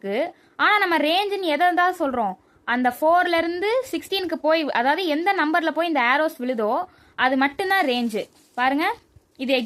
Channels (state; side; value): identical; both; correlation 1.00